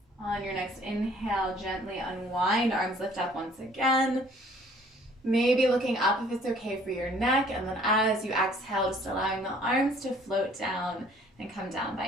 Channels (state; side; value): normal; both; correlation 0.57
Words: On your next inhale, gently unwind, arms lift up once again. Maybe looking up if it's okay for your neck, and then as you exhale, just allowing the arms to float down and come down